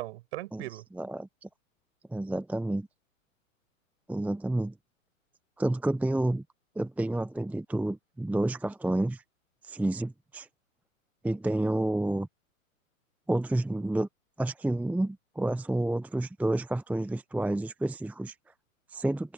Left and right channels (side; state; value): both; normal; correlation 0.98